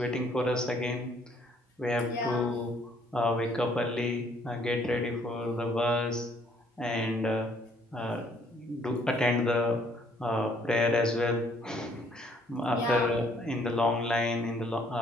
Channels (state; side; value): normal; both; correlation 0.64